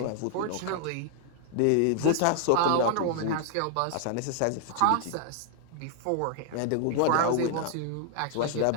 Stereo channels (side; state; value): both; different; correlation 0.00